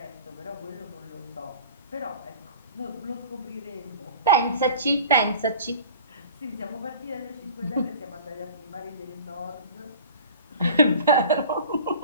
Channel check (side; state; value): both; inverted; correlation -0.42